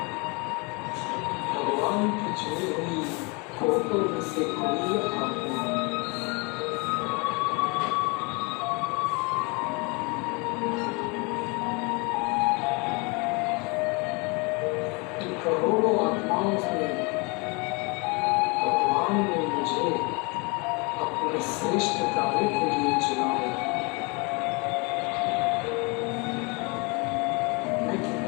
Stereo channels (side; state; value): right; quieter; 29.8 dB